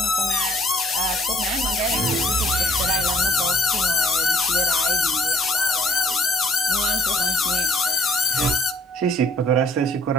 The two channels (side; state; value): both; normal; correlation 0.59